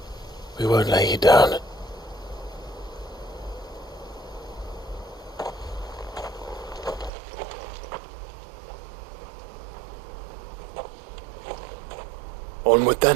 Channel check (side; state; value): left; drops out; at 7.1 s